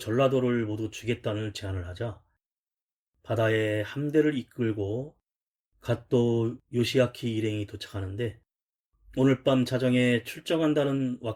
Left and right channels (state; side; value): identical; both; correlation 1.00